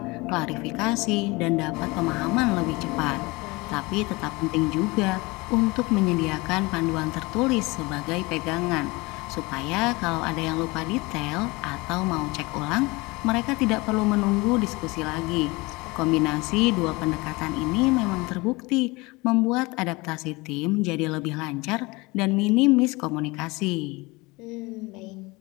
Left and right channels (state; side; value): quieter; right; 23.9 dB